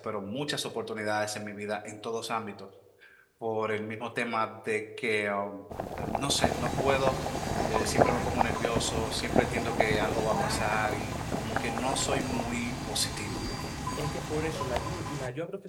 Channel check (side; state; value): both; identical; correlation 1.00